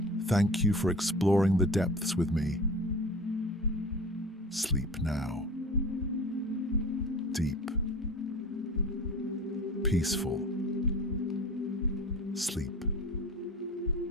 Thank you for exploring the depths with me. Sleep now. Deep. Peaceful. Sleep.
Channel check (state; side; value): normal; both; correlation 0.37